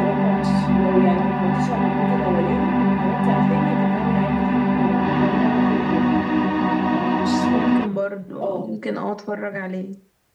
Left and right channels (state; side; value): identical; both; correlation 1.00